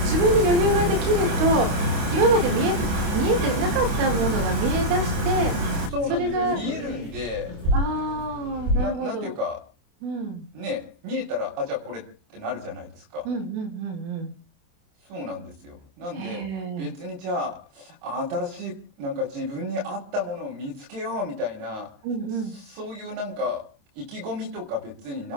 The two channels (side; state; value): left; late; 28 ms